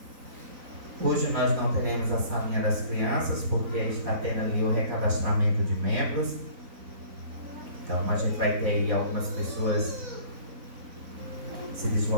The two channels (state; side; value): late; left; 4.0 ms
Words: Hoje nós não teremos a salinha das crianças, porque está tendo ali o recadastramento de membros. Então a gente vai ter aí algumas pessoas se